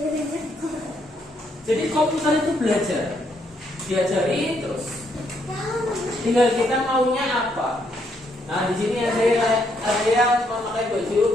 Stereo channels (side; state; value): both; normal; correlation 0.74